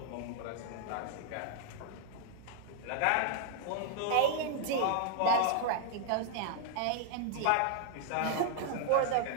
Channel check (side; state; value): both; different; correlation 0.00